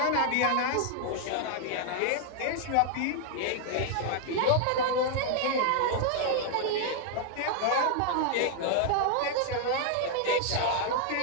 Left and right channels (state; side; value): different; both; correlation 0.00